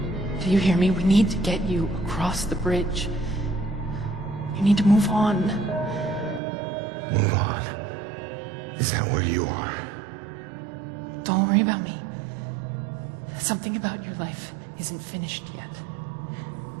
Do you hear me? We need to get you across the bridge. You need to move on. Move on? Is that where you are? Don't worry about me. Something about your life isn't finished yet.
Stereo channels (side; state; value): left; drops out; at 6.4 s